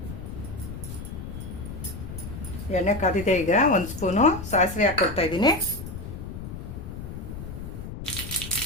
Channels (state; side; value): noise; left; rumble, 9 dB below the sound